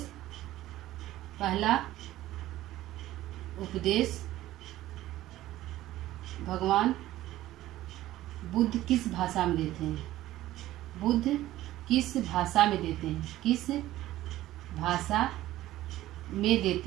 भगवान बुद्ध किस भाषा में देते हैं? बुद्ध किस भाषा में देते हैं? किस भाषा में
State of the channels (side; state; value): left; quieter; 15.1 dB